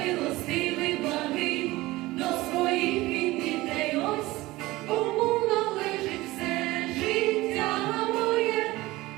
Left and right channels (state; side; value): quieter; left; 19.1 dB